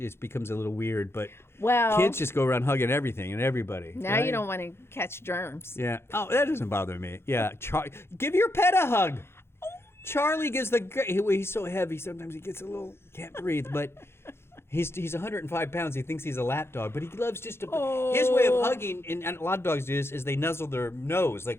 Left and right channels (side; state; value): right; late; 0.12 ms